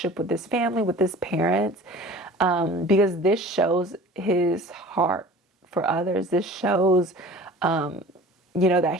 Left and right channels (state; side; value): normal; both; correlation 0.42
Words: with his family, with his parents, because this shows his heart for others. This shows that